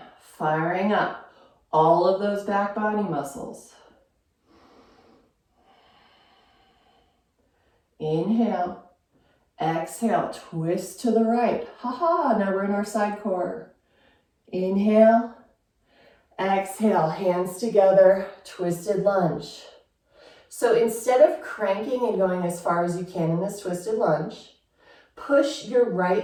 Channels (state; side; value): identical; both; correlation 1.00